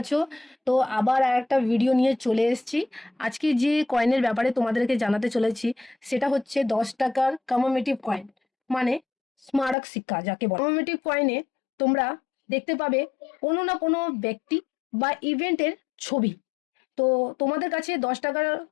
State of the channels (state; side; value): drops out; right; at 9.8 s